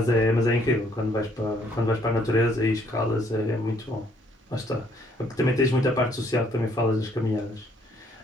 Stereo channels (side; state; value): both; normal; correlation 0.65